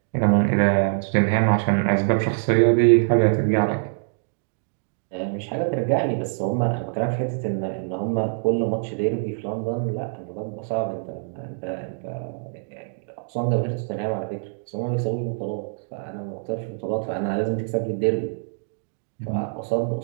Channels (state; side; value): silent; left; digital silence